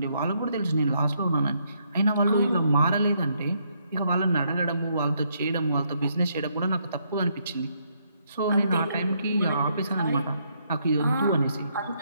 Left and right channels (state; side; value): inverted; both; correlation -0.74